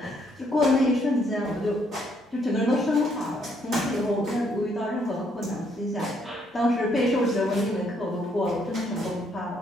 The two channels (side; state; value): both; normal; correlation 0.70